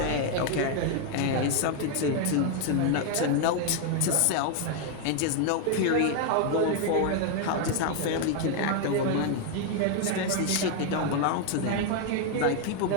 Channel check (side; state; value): both; different; correlation 0.00